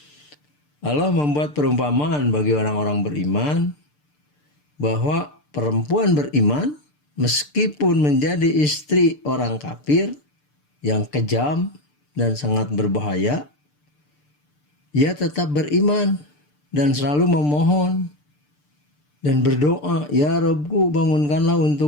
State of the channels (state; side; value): late; right; 6.8 ms